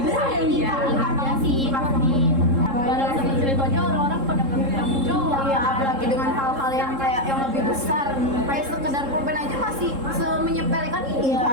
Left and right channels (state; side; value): late; left; 3.7 ms